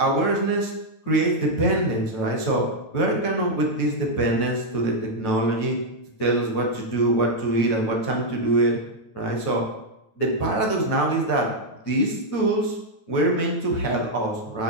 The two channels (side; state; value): right; late; 9.1 ms